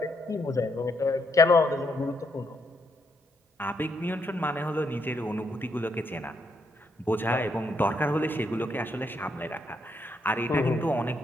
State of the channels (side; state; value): both; normal; correlation 0.76